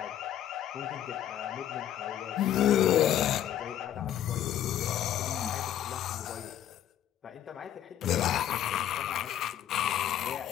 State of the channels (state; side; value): quieter; right; 11.1 dB